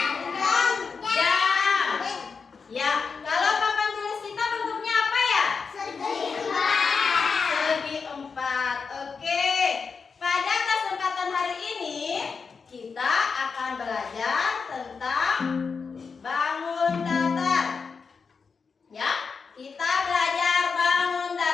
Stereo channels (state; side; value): quieter; right; 5.3 dB